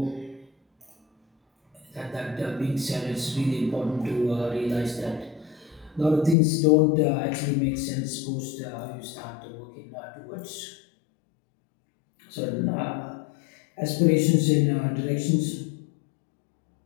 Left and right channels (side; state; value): right; drops out; at 6.4 s